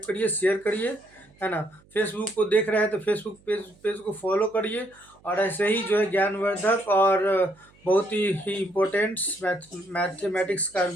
करिए, शेयर करिए, है ना। फेसबुक को देख रहे हैं तो फेसबुक पेज को फॉलो करिए। और ऐसे ही जो है ज्ञानवर्धक और बहुत ही इम्पोर्टेंट मैथमेटिक्स का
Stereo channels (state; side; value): noise; right; hum, 30 dB below the sound